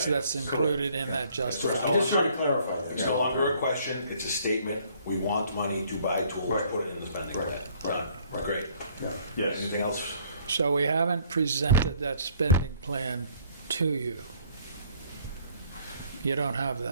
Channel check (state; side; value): inverted; both; correlation -0.60